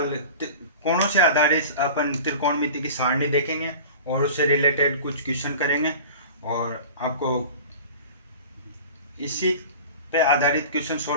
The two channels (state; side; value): inverted; both; correlation -0.38